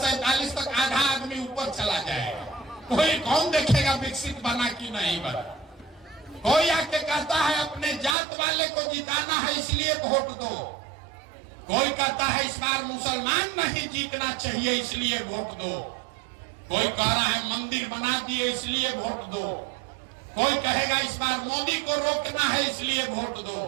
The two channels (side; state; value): left; drops out; at 8.2 s